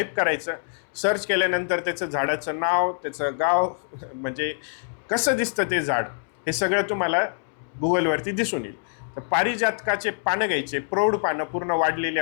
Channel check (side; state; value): right; silent; 62 dB below the other